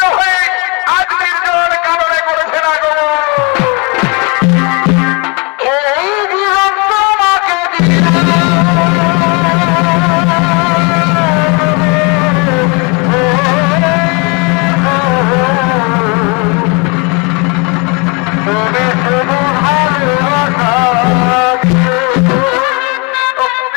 হয়ে আজ নির্জন কারণে করেছে না গো। এই জীবন তোমাকে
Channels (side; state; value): right; quieter; 30.0 dB